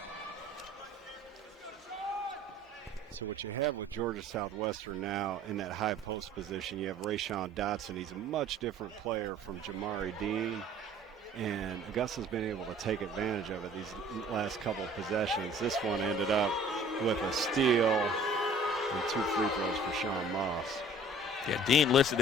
So what you have with Georgia Southwestern now in that high post position, you have Rayshawn Dotson. He's a much different player from Jamari Dean, and Augusta's been able to take advantage of it these last couple of possessions. This one ended up with a steal and 2 free throws for Sean Moss. Yeah, Dean listed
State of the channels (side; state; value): both; normal; correlation 0.50